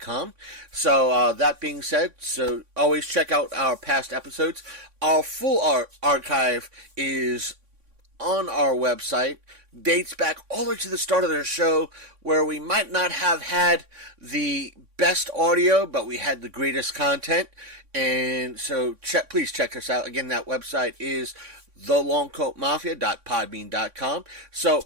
So that being said, so always check out our past episodes. Our full archive is on our website, dates back all the way to the start of the show, where we might not have had the best audio, but we had the greatest content. And so please check us out. Again, that website is thelongcoatmafia.podbean.com.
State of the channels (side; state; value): left; late; 3.6 ms